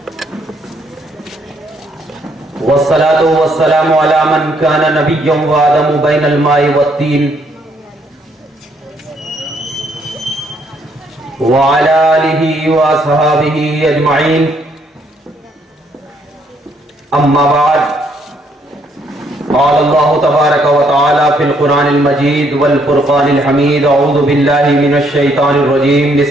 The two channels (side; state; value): both; normal; correlation 0.70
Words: والصلاة والسلام علی من کان نبیا وآدم بین الماء والطین، وعلی آلہ واصحابہ اجمعین، اما بعد، قال اللہ تبارک و تعالی فی القرآن المجید والفرقان الحمید، اعوذ باللہ من الشیطان الرجیم،